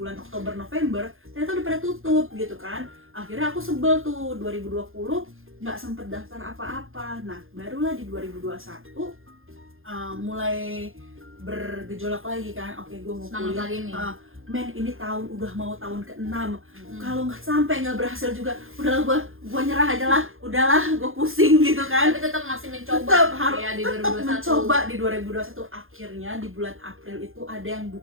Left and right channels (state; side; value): late; left; 0.60 ms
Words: Oktober November, ternyata udah pada tutup gitu kan. Akhirnya aku sebel tuh 2020 nggak sempet daftar apa-apa. Nah barulah di 2021 mulai bergejolak lagi kan. Oke, gue mau kuliah. Men ini udah mau tahun ke-6. Kalau nggak sampai nggak berhasil juga, udahlah gue nyerah aja lah, udahlah gue pusing gitu kan. Tapi tetap masih mencoba. Tetap mencoba di 2021. Akhirnya di bulan April itu ada yang